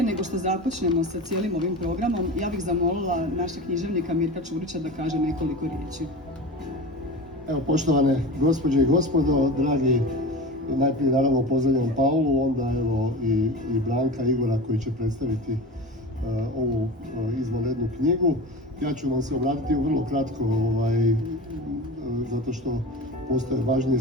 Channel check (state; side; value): normal; both; correlation 0.30